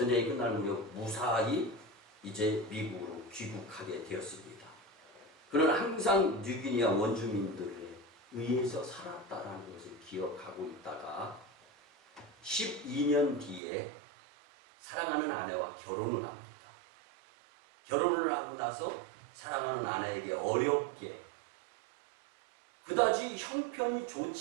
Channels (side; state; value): left; drops out; at 13.6 s